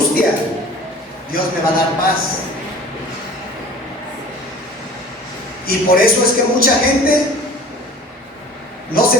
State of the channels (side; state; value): both; normal; correlation 0.44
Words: Dios me va a dar paz. Y por eso es que mucha gente no